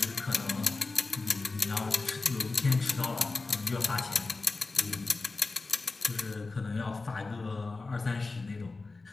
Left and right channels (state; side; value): quieter; right; 3.7 dB